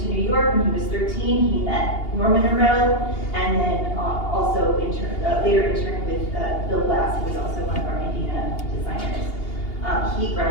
New York when he was 13. He met Norman Norell, and then also later interned with Bill Glass, who was also one of our Indiana designers. He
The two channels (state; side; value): late; right; 2.8 ms